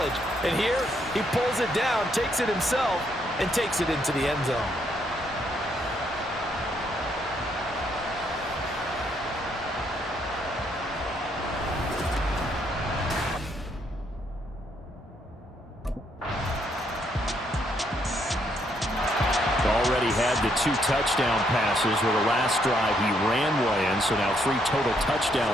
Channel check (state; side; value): normal; both; correlation 0.73